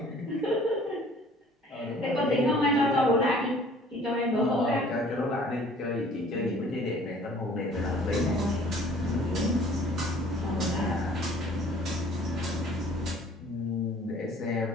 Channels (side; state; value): both; normal; correlation 0.53